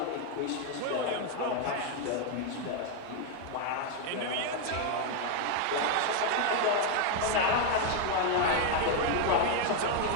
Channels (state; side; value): different; both; correlation 0.01